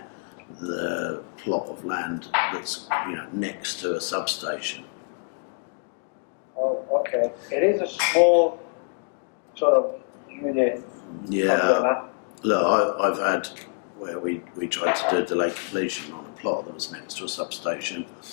the plot of land that's next to a substation. Oh, okay. It is a small sort of unit. Yeah. Look, I've had where we tried to do a delay completion on a plot that was next to a substation,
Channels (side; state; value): right; quieter; 39.2 dB